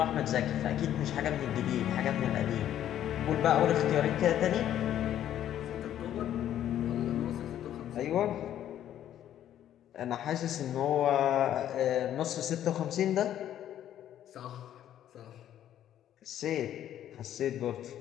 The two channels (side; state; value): right; quieter; 11.2 dB